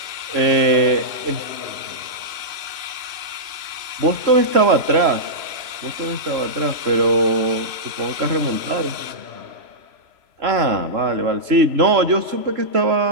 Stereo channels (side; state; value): left; late; 3.0 ms